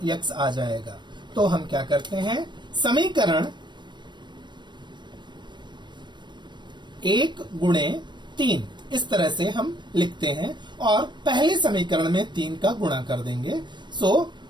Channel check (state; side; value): late; left; 0.22 ms